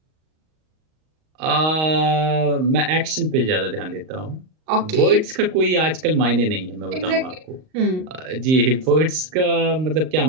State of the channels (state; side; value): late; left; 38 ms